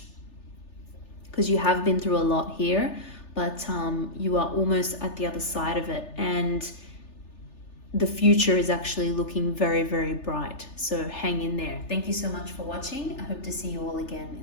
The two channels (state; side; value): late; right; 3.3 ms